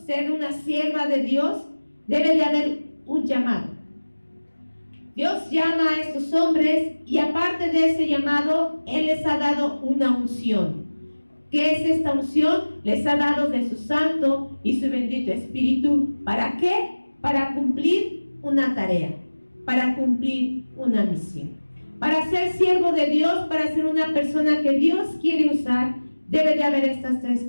ser una sierva de Dios, debe de haber un llamado. Dios llama a estos hombres y aparte de ese llamado, Él les ha dado una unción. ¿Qué es esta unción? Les ha dado de su Santo y su bendito Espíritu. ¿Para qué? Para cumplir una tarea, para cumplir una misión. Para ser siervo de Dios, para ser una persona que Dios quiere usar, debe de haber estas tres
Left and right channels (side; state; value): both; inverted; correlation -1.00